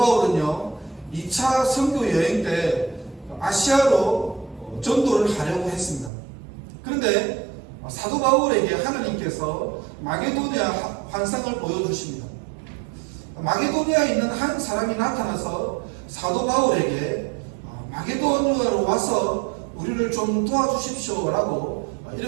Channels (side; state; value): left; drops out; at 6.1 s